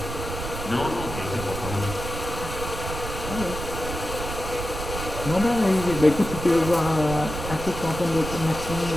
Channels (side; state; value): right; noise; rumble, 7 dB below the sound